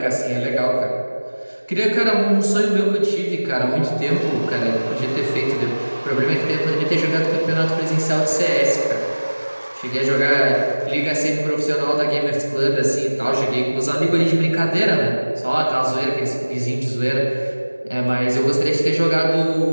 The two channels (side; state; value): both; inverted; correlation -1.00